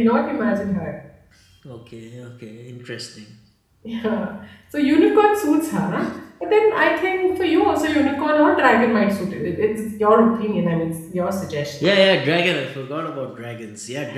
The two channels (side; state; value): both; identical; correlation 1.00